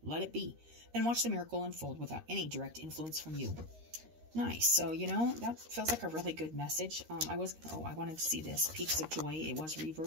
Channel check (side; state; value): left; late; 13 ms